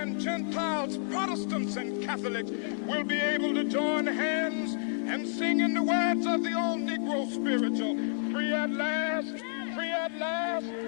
Gentiles, Protestants and Catholics, will be able to join hands and sing in the words of the old Negro spiritual, free at last, free at last.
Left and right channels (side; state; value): right; silent; digital silence